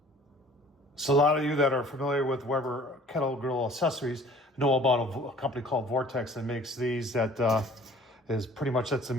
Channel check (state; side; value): normal; both; correlation 0.51